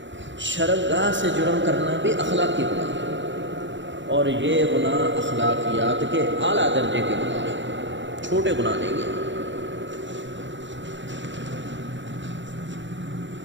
شرمگاہ سے جرم کرنا بھی اخلاقی گناہ ہے، اور یہ گناہ اخلاقیات کے اعلیٰ درجے کے گناہ ہیں، چھوٹے گناہ نہیں ہیں۔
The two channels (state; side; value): late; left; 0.54 ms